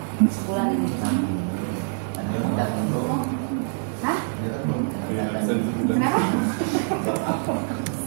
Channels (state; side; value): silent; left; 61 dB below the other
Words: sebulan ini? Hah? Kenapa?